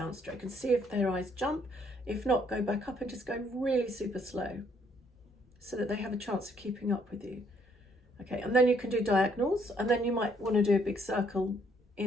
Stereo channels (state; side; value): normal; both; correlation 0.67